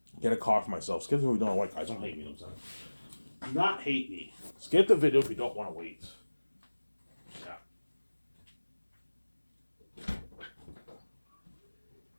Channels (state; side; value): inverted; both; correlation -1.00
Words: Get a car for myself. Skip the video if you don't want, guys. Don't hate me. You know what I'm saying? Do not hate me. Skip the video if you don't want to wait. Yeah.